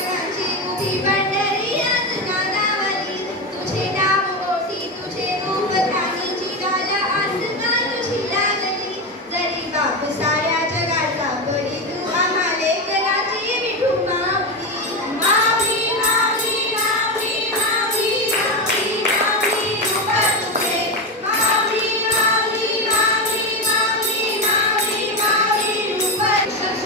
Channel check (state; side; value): normal; both; correlation 0.15